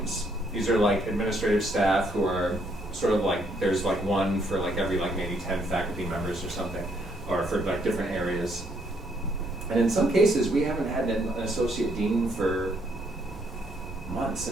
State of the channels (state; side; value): normal; both; correlation 0.71